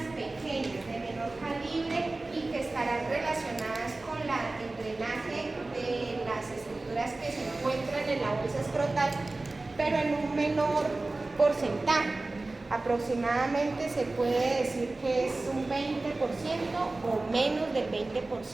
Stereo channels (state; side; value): quieter; left; 3.1 dB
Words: pequeñas de menor calibre y que estarán relacionadas con el drenaje de las estructuras que se encuentran en la bolsa escrotal, pero en un menor porcentaje. Aproximadamente se puede decir que es un 20% o menos del 20%